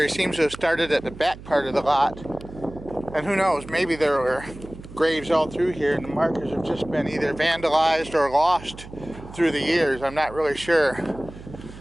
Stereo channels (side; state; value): right; noise; hum, 16 dB below the sound